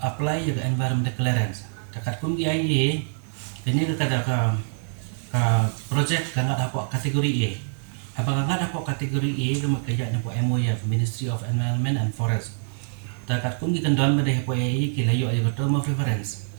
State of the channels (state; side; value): silent; left; digital silence